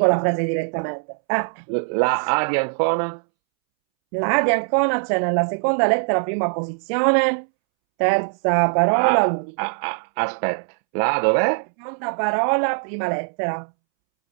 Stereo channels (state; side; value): silent; left; 65 dB below the other